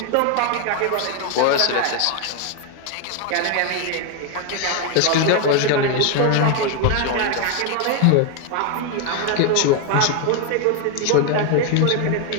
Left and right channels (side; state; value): both; different; correlation 0.01